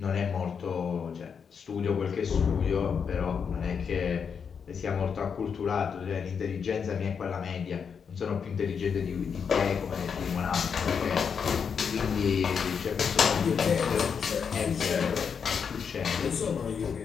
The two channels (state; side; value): quieter; right; 6.6 dB